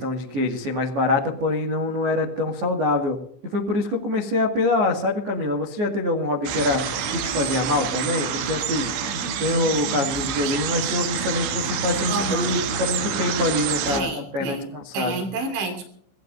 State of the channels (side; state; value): left; late; 16 ms